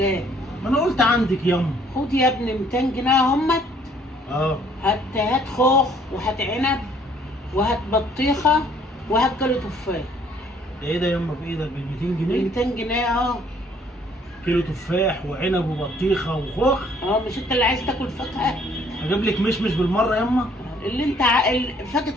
ما انا قلت عندك ياما. خد يا ابني 200 جنيه همت. اه هات خوخ وهات عنب وهات بطيخه وهات كيلو تفاح. ده ايه ده ياما بايدك ب 200 جنيه؟ 200 جنيه اه. كيلو تفاح وعنب وبطيخه وخوخ؟ مش انت اللي عايز تاكل فاكهه؟ اجيب لك مشمش بالمره ياما؟ اللي انت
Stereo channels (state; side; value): normal; both; correlation 0.62